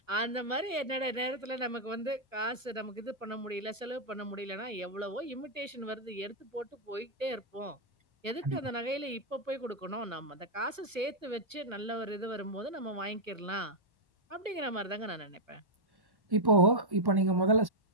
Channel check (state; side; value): late; left; 1.1 ms